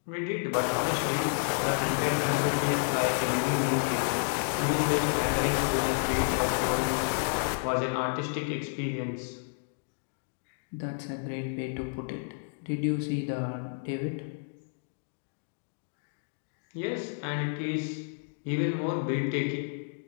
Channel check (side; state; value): right; silent; digital silence